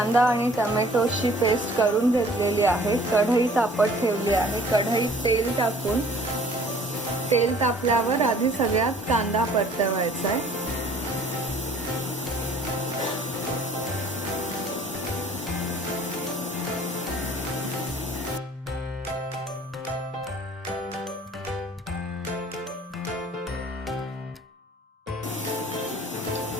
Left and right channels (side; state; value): both; normal; correlation 0.53